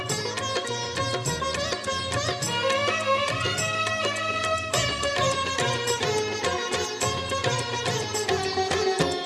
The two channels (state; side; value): identical; both; correlation 1.00